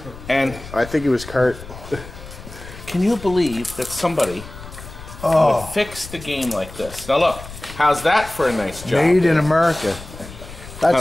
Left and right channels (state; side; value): noise; left; rumble, 15 dB below the sound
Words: And I think it was Kurt. can you believe that somebody would fix the game like this? Now look, how's that for a nice job? Made in America. That's